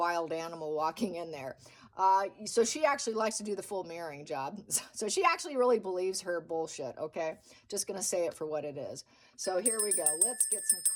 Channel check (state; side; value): identical; both; correlation 1.00